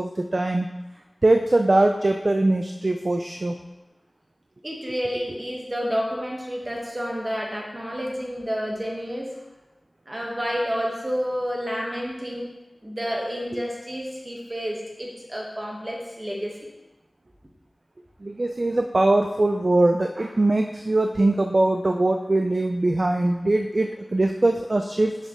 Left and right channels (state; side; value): normal; both; correlation 0.98